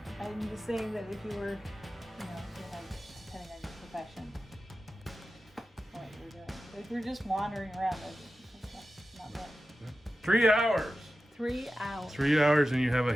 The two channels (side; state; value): both; normal; correlation 0.93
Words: I'm just saying that if you were, depending on your profession, what you're doing. But if you're just wandering around, that's not bad. 3 hours. 3 hours. 3 hours and you have a